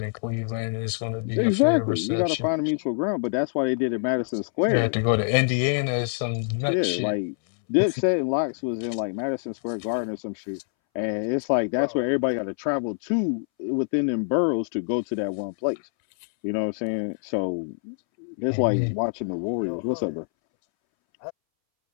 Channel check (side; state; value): right; silent; 61 dB below the other